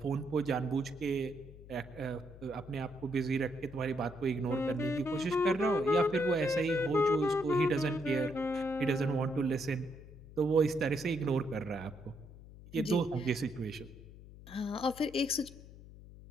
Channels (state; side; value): noise; left; hum, 18 dB below the sound